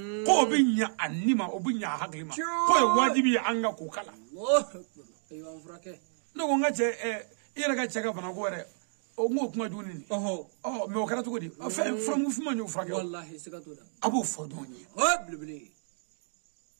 ko binya anima obinya haglima ko wajibi anga ko kala ay wa frake no nga che ira ga cheka bana ko re o ngo kuma juni ni me o kara to godi fa from fu ma nyu frake wallahi sikatoda abu fodoni blibli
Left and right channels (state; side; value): silent; left; digital silence